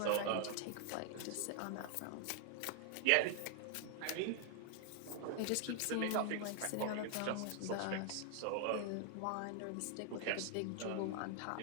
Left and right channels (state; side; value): different; both; correlation 0.00